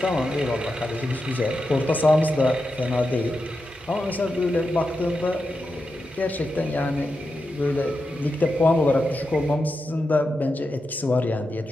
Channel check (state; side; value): normal; both; correlation 0.88